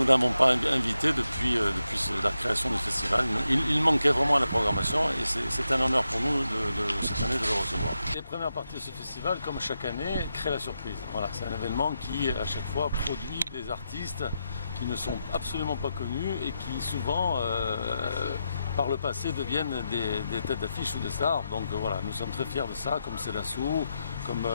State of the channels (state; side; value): inverted; both; correlation -0.86